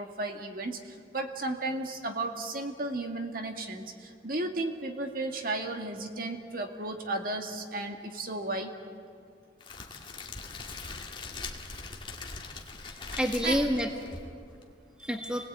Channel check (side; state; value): both; normal; correlation 0.39